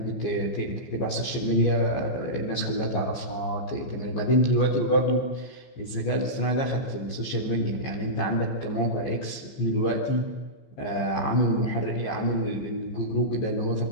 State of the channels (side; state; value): right; late; 15 ms